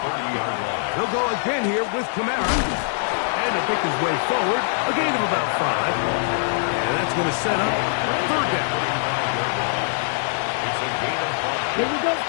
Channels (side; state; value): right; silent; digital silence